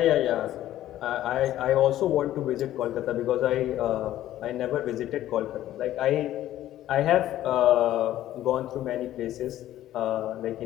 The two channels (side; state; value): right; quieter; 13.3 dB